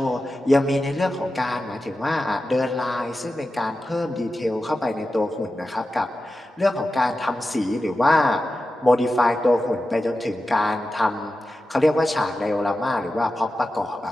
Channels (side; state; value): both; normal; correlation 0.92